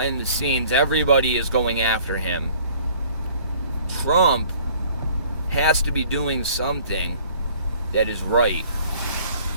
the scenes, everybody is going after him. Trump has to be doing something that is right.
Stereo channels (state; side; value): inverted; both; correlation -0.53